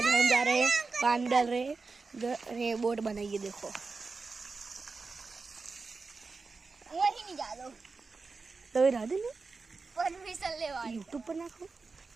हम जा रहे हैं, पानी डाल रहे हैं, बोट बनाइए। देखो वही नहीं जा लो तो इधर नहीं परमिशन ले वाली यूट्यूब पर नाखो।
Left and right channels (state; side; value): quieter; left; 4.3 dB